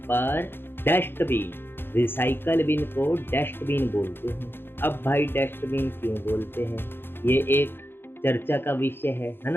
पर डस्टबिन, रिसाइकल बिन को डस्टबिन बोलते हैं। अब भाई डस्टबिन क्यों बोलते हैं, ये एक चर्चा का विषय है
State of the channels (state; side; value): late; right; 0.10 ms